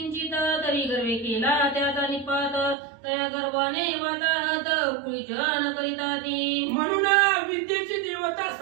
तरी गर्वे केला त्याचा निपात, तया गर्वाने वाताहत कुळीजन करिता ती. म्हणून विद्येची देवता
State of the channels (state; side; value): drops out; left; at 2.8 s